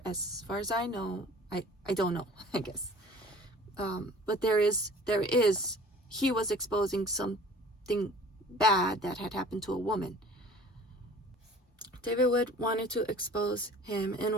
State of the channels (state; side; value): normal; both; correlation 0.47